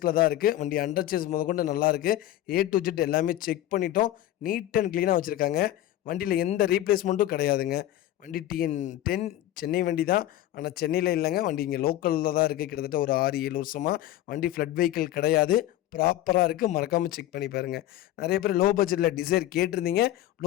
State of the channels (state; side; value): quieter; right; 13.7 dB